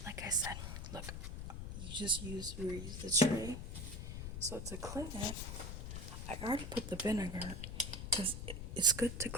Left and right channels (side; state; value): left; noise; rumble, 6 dB below the sound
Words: like I said, look, you use the tray. So to clean it, I already put the vinegar because it's good to